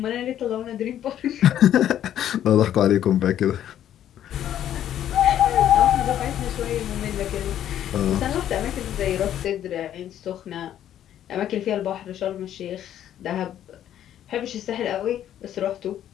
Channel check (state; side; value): quieter; right; 11.0 dB